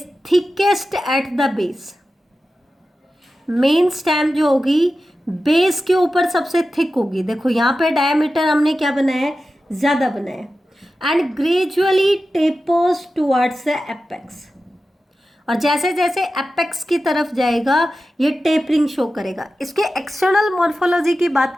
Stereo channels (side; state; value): both; normal; correlation 0.93